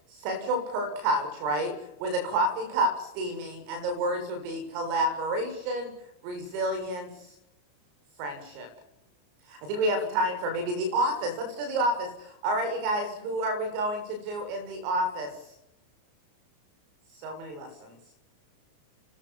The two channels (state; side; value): late; left; 34 ms